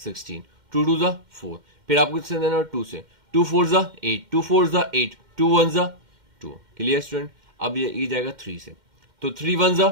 2 2 जा 4, फिर आपको इससे देना 2 से, 2 4 जा 8, 2 4 जा 8, 2 1 जा 2, क्लियर स्टूडेंट। अब ये जाएगा 3 से, तो 3 1 जा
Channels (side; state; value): left; late; 2.1 ms